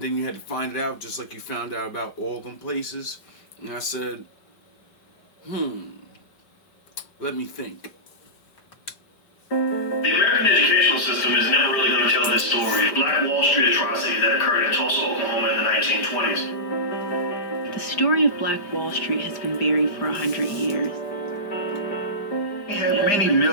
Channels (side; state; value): right; late; 5.1 ms